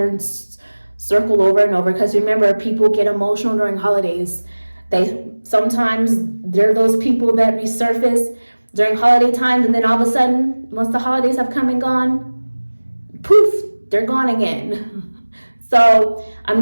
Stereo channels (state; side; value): inverted; both; correlation -1.00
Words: circle over and over. Because remember, people get emotional during holidays. They're those people that resurface during holiday times, and then all of a sudden, once the holidays have come and gone, poof, they're gone again. So I'm